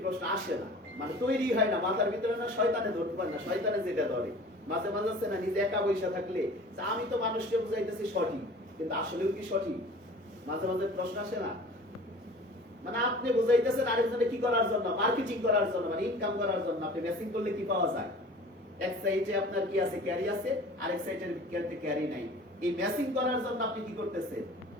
প্রশ্ন আসে না, মানে তৈরি হয় না মাথার ভিতরে, না শয়তানে ধরতে পারে না, শয়তানে যেটা ধরে মাঝে মাঝে আছে না, নিজে একা বসে থাকলে আমি তো মানুষকে বুঝাইতেছি সঠিক, কিন্তু আসলেও কি সঠিক, মাঝে মাঝে প্রশ্ন আসে না। মানে আপনি বুঝাইতেছেন আরেকজনে কি করার জন্য, মার্কেটিং করার জন্য, মানে ইনকাম করার জন্য। আপনি মেসিং করলে কি পাওয়া যায়? এক সাইডে আপনার কি আছে, ক্যারি আছে, আরেক সাইডের ক্যারি নাই। এই মেসিং করার জন্য আপনি কি করতেছেন?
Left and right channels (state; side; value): normal; both; correlation 0.43